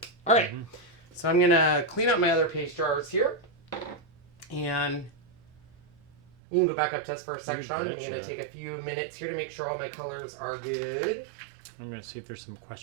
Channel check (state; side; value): drops out; left; at 6.3 s